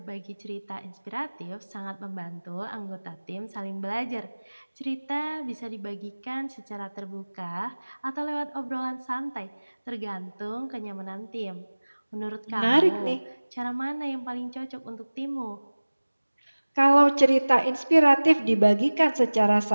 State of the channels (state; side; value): inverted; both; correlation -1.00